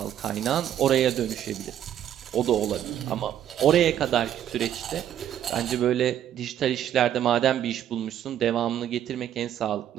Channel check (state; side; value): quieter; left; 10.6 dB